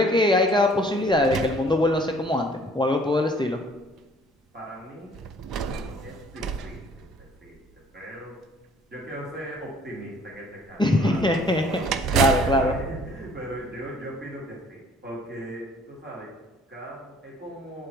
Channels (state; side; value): normal; both; correlation 0.56